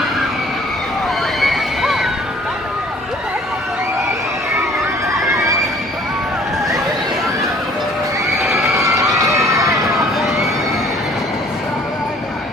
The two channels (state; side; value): normal; both; correlation 0.55